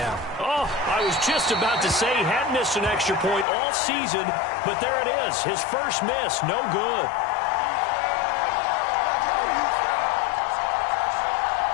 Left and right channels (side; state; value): right; drops out; at 3.5 s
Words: Oh, I was just about to say he hadn't missed an extra point all season, but there it is. His first miss, no good.